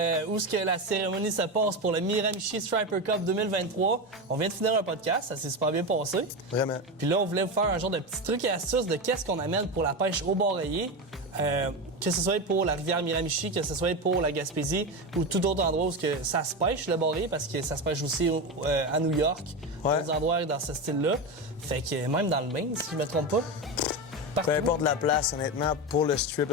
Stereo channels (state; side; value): normal; both; correlation 0.18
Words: où est-ce que la cérémonie se passe pour le Miramichi Striper Cup 2023. On vient de finir un podcast, ça s'est super bien passé. Vraiment. Puis là, on voulait vous faire un genre de petit truc et astuce de qu'est-ce qu'on amène pour la pêche au bord rayé. Que ce soit pour la rivière Miramichi, que ce soit pour la Gaspésie ou tout autre endroit où que ça se pêche, le bord rayé, parce que ça se pêche aussi à New York, d'autres endroits dans ce style-là. Fait que même dans le Maine, si je me trompe pas. Peu importe la place, honnêtement, pour le